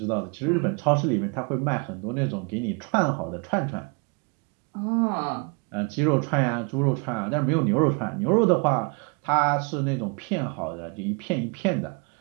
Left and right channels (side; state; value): left; quieter; 33.5 dB